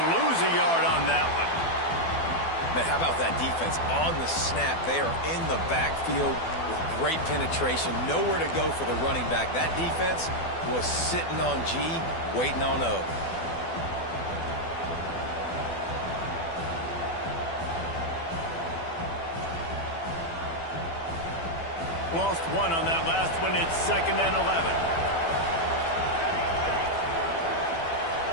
lose a yard on that one. Man, how about that defense on the snap? They are in the backfield with great penetration. Nowhere to go for the running back. That defense was sitting on G, waiting on O. Lost one on that last one. It's 2nd and 11.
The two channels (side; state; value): right; late; 12 ms